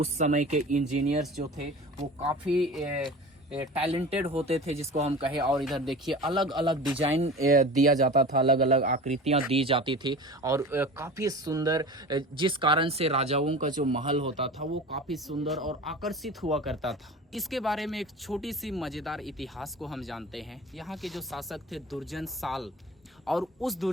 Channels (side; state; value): both; normal; correlation 0.36